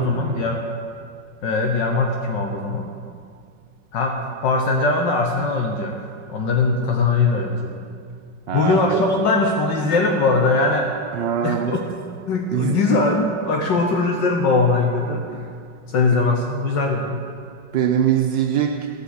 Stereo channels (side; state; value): right; late; 5.4 ms